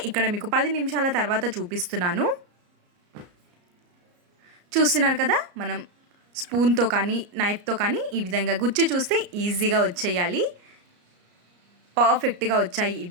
ఇక్కడ మీకు 10 నిమిషాల తర్వాత చూపిస్తున్నాను. చూస్తున్నారు కదా, మనం స్పూన్తో కానీ నైఫ్తో కానీ ఈ విధంగా గుచ్చి చూస్తే ఈజీగా వచ్చేయాలి. పర్ఫెక్ట్గా వచ్చాయి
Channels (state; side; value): late; left; 34 ms